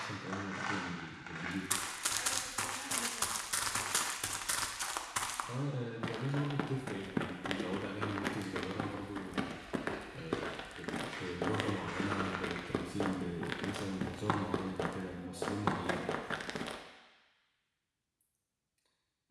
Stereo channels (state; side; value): identical; both; correlation 1.00